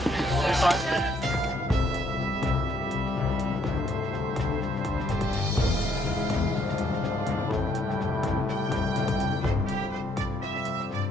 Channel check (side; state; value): both; normal; correlation 0.69